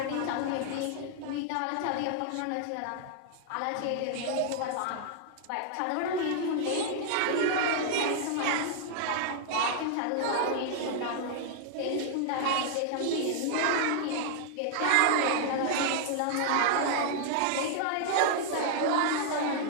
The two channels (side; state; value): both; different; correlation -0.01